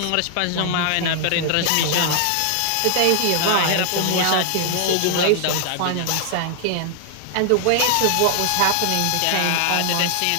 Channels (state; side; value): different; both; correlation 0.00